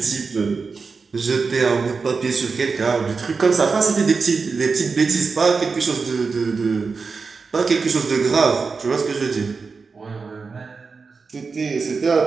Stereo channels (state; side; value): quieter; left; 4.7 dB